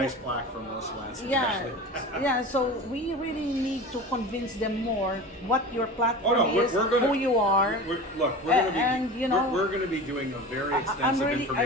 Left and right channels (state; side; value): normal; both; correlation 0.33